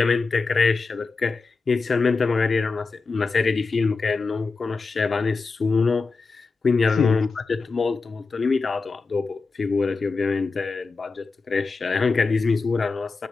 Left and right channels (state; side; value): quieter; right; 4.3 dB